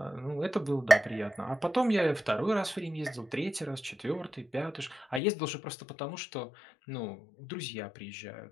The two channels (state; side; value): drops out; right; at 5.2 s